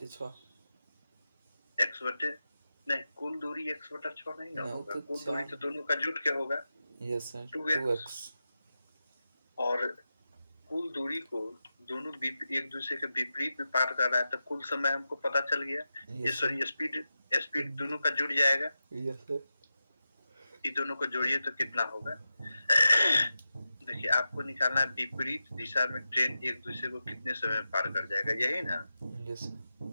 x बटे, नहीं, कुल दूरी x बटा 6 नहीं ना नहीं होगा, तो कुल दूरी 4। तो दोनों का जुट के होगा, यस सर। 2x। 2x। और कुल दूरी को दोनों एक दूसरे के विपरीत में पार कर रहा है, तो कुल समय हमको पता चल गया। ये yes sir. Sorry, speed, speed दोनों का जुड़ जाएगा। Yes sir. ये दोनों को जोड़िए तो कितना होगा? देखिए, आपको निकालना है विपरीत दिशा में ट्रेन एक दूसरे को कितने समय में पार कर जाएगा, यही ना? Yes sir.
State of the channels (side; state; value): both; inverted; correlation -0.92